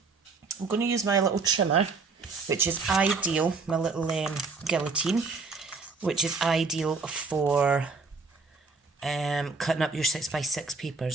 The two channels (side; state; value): left; quieter; 4.4 dB